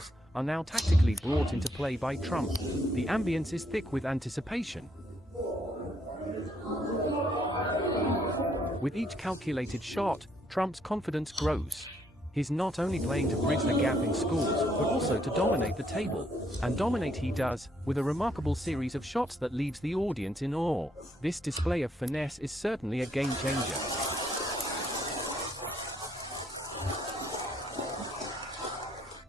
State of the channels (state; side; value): normal; both; correlation 0.71